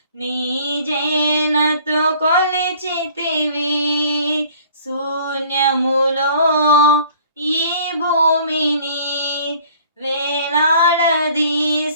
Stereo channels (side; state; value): both; inverted; correlation -0.53